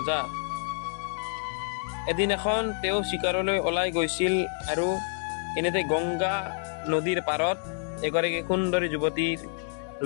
এদিন এখন তেওঁ চিকাৰলৈ ওলাই গৈছিল আৰু এনেতে গংগা নদীৰ পাৰত এগৰাকী সুন্দৰী যুৱতীৰ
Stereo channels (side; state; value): right; silent; 59 dB below the other